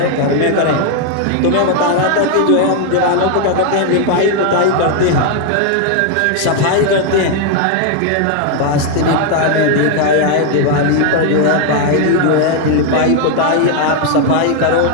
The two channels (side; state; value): both; different; correlation 0.00